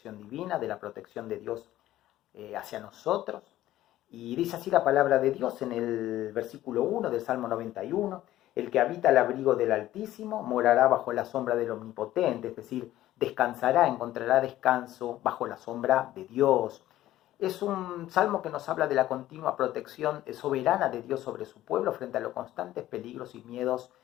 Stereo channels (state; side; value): quieter; right; 14.3 dB